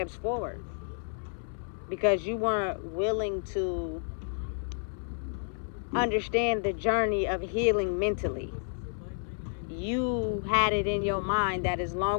forward because you weren't willing to understand the journey of healing mentally. You had it in your mind that as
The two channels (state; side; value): silent; right; 57 dB below the other